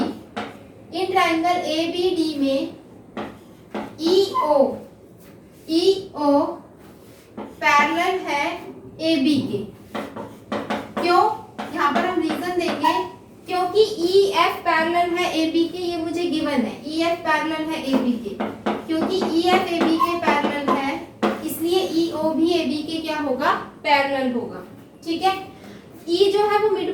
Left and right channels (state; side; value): identical; both; correlation 1.00